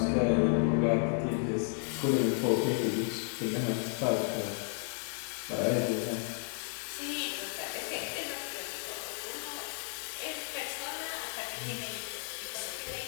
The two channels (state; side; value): silent; right; 56 dB below the other